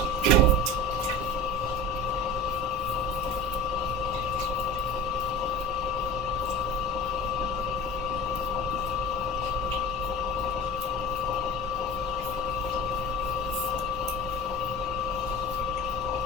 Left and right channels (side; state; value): both; normal; correlation 0.34